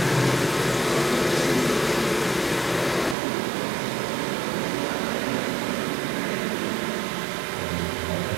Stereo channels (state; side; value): drops out; left; at 3.2 s